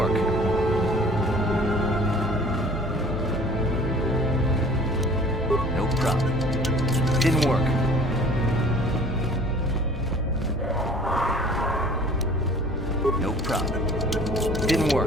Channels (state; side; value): normal; both; correlation 0.49